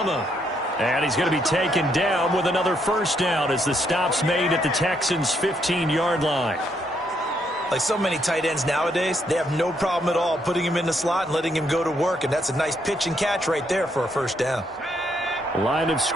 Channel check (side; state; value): both; normal; correlation 0.74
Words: And he's going to be taken down with another first down as the stop's made at the Texans' 15-yard line. Like so many tight ends nowadays, they have no problem at all putting him in the slot and letting him go to work. And that's a nice pitch and catch right there for a first down. Line of